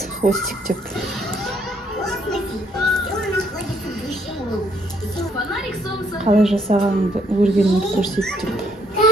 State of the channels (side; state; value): both; normal; correlation 0.70